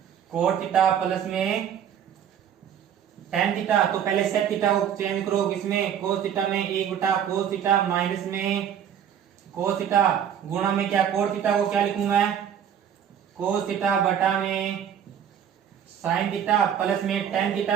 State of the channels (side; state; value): left; quieter; 9.0 dB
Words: कोट थीटा प्लस में टेन थीटा। तो पहले सेक थीटा को चेंज करो किसमें, कोस थीटा में, 1 बटा कोस थीटा माइनस में कोस थीटा गुणा में क्या, कोट थीटा को क्या लिखूं मैं, कोस थीटा बटा में साइन थीटा प्लस में टेन थीटा